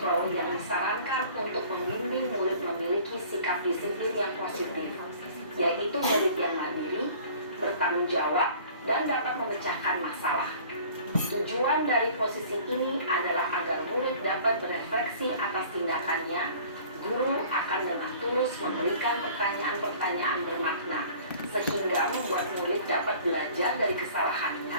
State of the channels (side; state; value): both; inverted; correlation -0.49